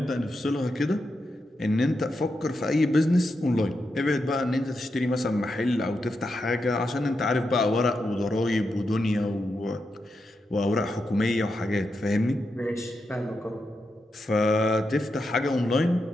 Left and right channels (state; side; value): normal; both; correlation 0.86